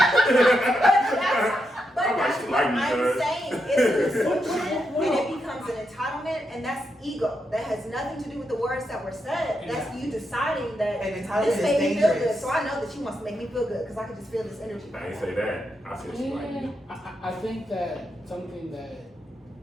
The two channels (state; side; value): normal; both; correlation 0.84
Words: But I'm like, that's she what like me, I'm cuz. saying. It's an assumption, and it becomes an entitlement, and that's ego. That has nothing to do with the words that were said. That's you deciding that and entitlement this is made me feel good, dangerous. so I know that she wants to make me feel good because I can just feel this energy. I ain't say that. I said she like me. I think that something that